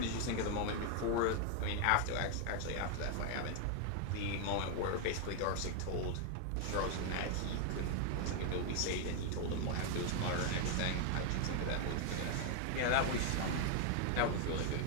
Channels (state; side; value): different; both; correlation 0.00